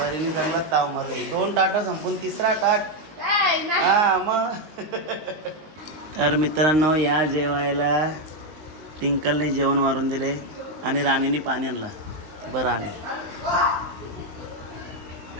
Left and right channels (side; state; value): left; late; 19 ms